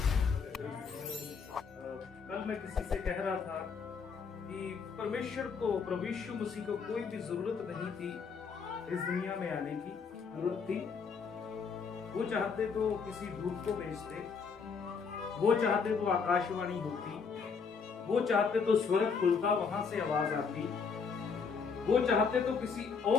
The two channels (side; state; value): right; quieter; 5.6 dB